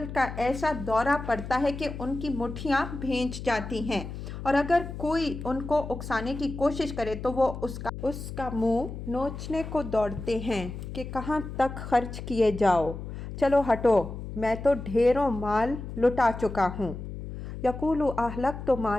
کا ایسا دورہ پڑتا ہے کہ ان کی مٹھیاں بھینچ جاتی ہیں، اور اگر کوئی ان کو اکسانے کی کوشش کرے تو وہ اس کا منہ نوچنے کو دوڑتے ہیں کہ کہاں تک خرچ کیے جاؤ، چلو ہٹو، میں تو ڈھیروں مال لٹا چکا ہوں۔ یقول اہلکت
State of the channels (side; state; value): left; noise; hum, 9 dB below the sound